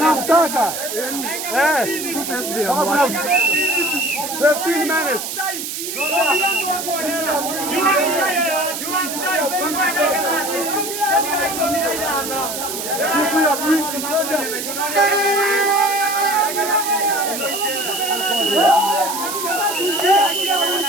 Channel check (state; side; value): noise; right; hiss, 5 dB below the sound